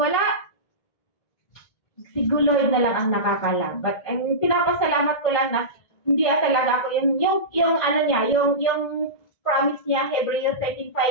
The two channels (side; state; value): right; late; 1.6 ms